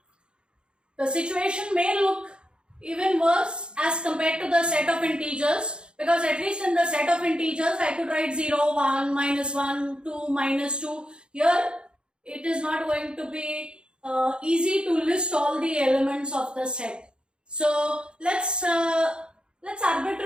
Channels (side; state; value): left; late; 0.052 ms